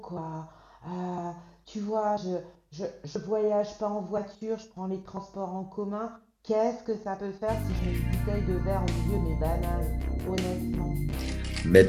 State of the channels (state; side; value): identical; both; correlation 1.00